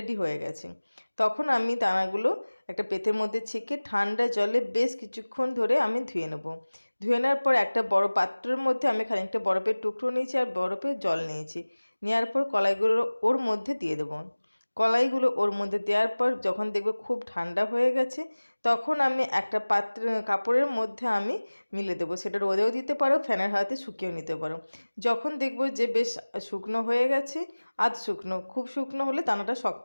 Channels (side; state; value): both; inverted; correlation -1.00